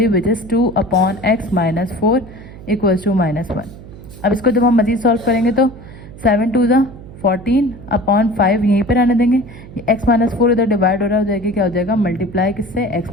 which is 2/x - 4 equals to -1। अब इसको जब हम मज़ीद सॉल्व करेंगे तो 7 2 ज़ा 14/5 यहीं पर आने देंगे, ये x - 4 इधर डिवाइड हो रहा हो जाएगी, क्या हो जाएगा मल्टीप्लाई किससे x -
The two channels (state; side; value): noise; right; hum, 16 dB below the sound